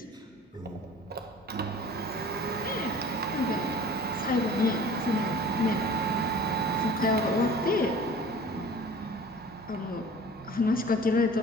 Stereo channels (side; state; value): both; normal; correlation 0.44